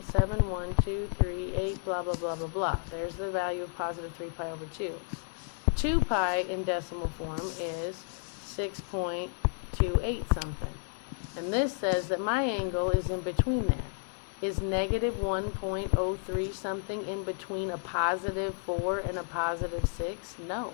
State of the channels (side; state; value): right; silent; 57 dB below the other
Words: blah, blah, blah, blah, blah. There's the value of positive 3 pi over 2. 2 pi in decimal form is 6.28 something. And this says that my angle is in between there. Is negative 1.03 something in between a positive 4 and a positive 6? No,